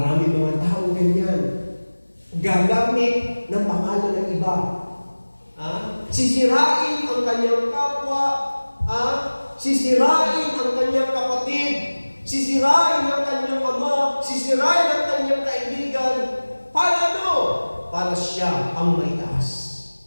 mga tao ganyan. Gagamit ng pangalan ng iba. Sisirain ang kanyang kapwa. Sisirain ang kanyang kapatid. Sisirain ang kanyang ama. Sisirain ang kanyang kaibigan. Para ano? Para siya ang may taas.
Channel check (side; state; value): both; inverted; correlation -1.00